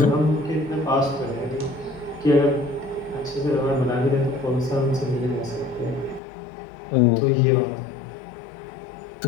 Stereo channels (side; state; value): right; drops out; at 6.2 s